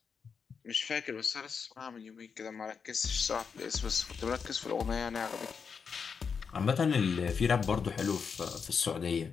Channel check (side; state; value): right; quieter; 6.0 dB